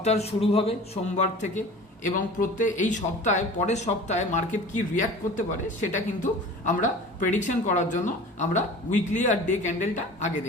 শুরু হবে সোমবার থেকে এবং এই সপ্তাহে পরের সপ্তাহে মার্কেট কি রিয়াক্ট করতে পারে সেটা কিন্তু আমরা প্রেডিকশন করার জন্য আমরা উইকলি আর ডে ক্যান্ডেলটা আগে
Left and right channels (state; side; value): normal; both; correlation 0.40